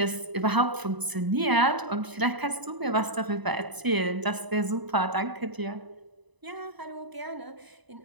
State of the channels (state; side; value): late; left; 1.0 ms